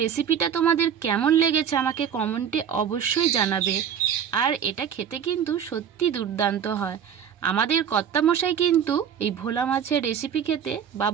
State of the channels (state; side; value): quieter; left; 8.2 dB